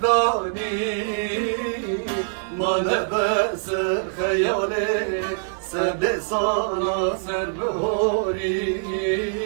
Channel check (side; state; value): left; silent; digital silence